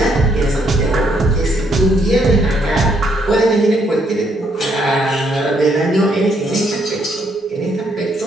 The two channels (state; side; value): normal; both; correlation 0.72